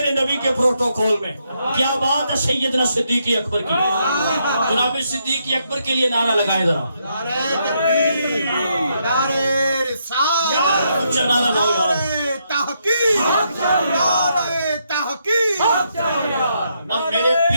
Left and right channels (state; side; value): inverted; both; correlation -0.77